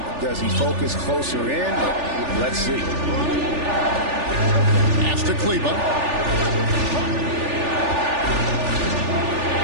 Does he focus closer in? Let's see. Pass to Kleba.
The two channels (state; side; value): late; left; 3.4 ms